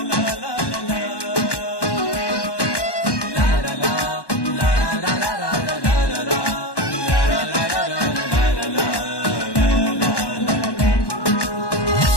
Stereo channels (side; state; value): right; late; 1.1 ms